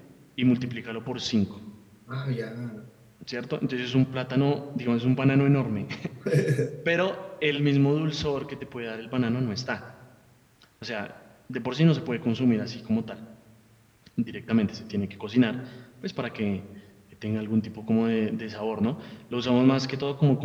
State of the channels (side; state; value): both; identical; correlation 1.00